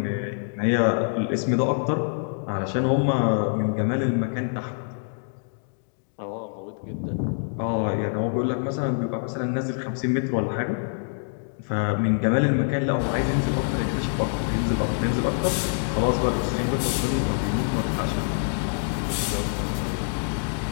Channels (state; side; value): silent; right; digital silence